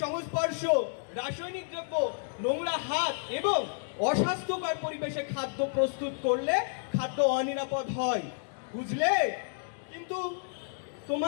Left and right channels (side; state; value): right; silent; digital silence